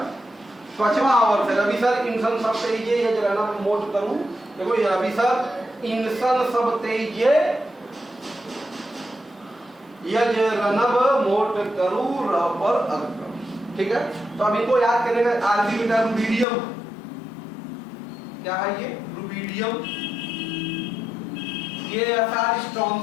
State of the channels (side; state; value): right; drops out; at 16.4 s